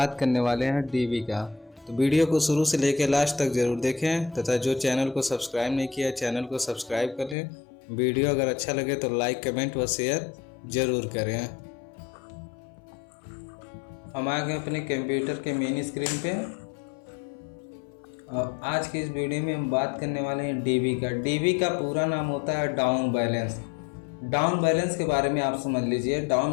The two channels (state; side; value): drops out; right; at 7.4 s